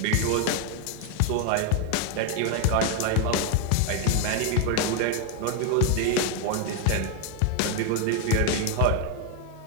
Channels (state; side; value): different; both; correlation 0.01